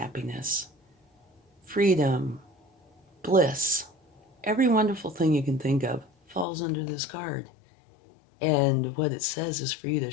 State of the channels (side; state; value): right; drops out; at 6.5 s